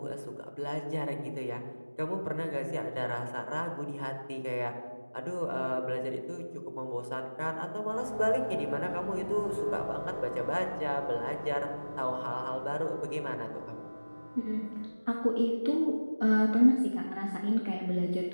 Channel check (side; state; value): both; inverted; correlation -1.00